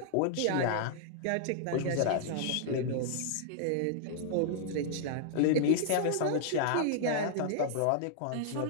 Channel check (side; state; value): both; different; correlation -0.01